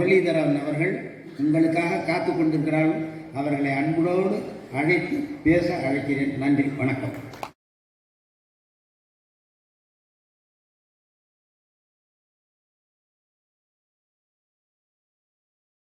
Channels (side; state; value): both; identical; correlation 1.00